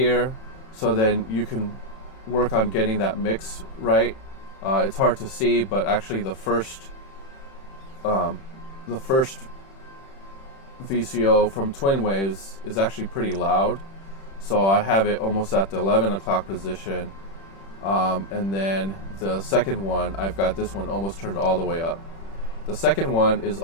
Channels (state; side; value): late; right; 31 ms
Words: so then you can work on getting that mix right. It's hard to see, but actually the first VCO from Twin Waves is actually pretty loud, so I have it almost at the 11 o'clock position, and then the second one, I've got this one almost turned all the way up. The second one is